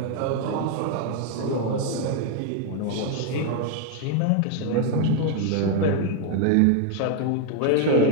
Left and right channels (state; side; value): different; both; correlation 0.00